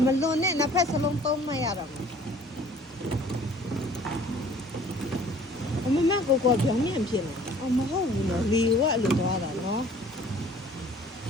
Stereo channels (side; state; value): both; normal; correlation 0.53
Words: ne na phas salong tom ma ya ra. အမမကိုကိုပြောင်းမြန်ဖြစ်နေ။မဟုတ်ဘူးနော်။လေကအဲ့လိုသွားတာနော်